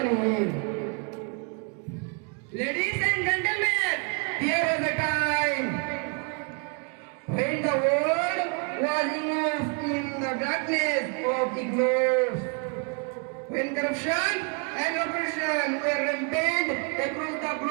him. Ladies and gentlemen, there was a time when the world was immersed in the darkness of ignorance, when corruption and oppression were rampant across the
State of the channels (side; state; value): left; quieter; 36.5 dB